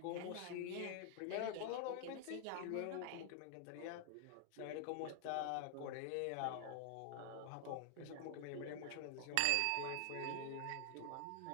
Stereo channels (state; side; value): different; both; correlation 0.00